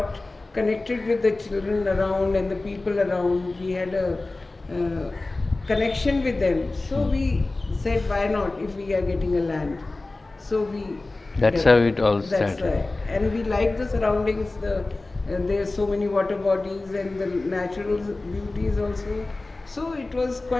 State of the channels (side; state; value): right; quieter; 3.1 dB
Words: connected with the children around and the people around. We had a connection with them. So we said, why not if we are getting a land? So we. That's how it all That's started. right. And we like the surroundings. There's so many water bodies and the natural beauties also. So it was